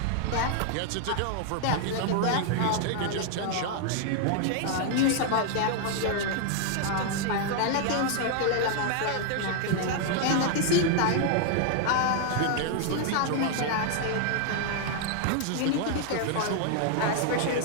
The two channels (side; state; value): both; different; correlation 0.00